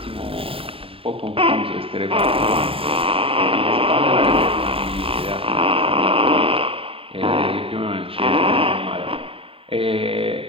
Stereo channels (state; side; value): late; left; 0.27 ms